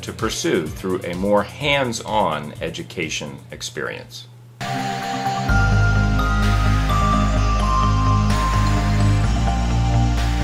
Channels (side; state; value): both; identical; correlation 1.00